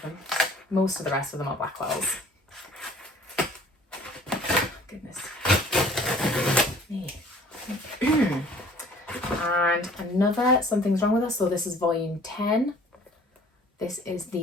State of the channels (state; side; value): normal; both; correlation 0.52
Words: them. Most of the rest of them are Blackwells. Goodness me. And another Something's Wrong With Us. So this is volume 10. This is